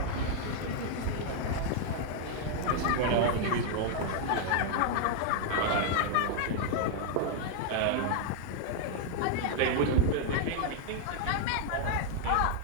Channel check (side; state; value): both; different; correlation 0.00